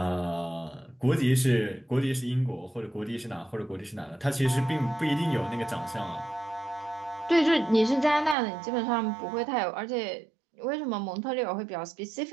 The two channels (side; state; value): left; drops out; at 8.3 s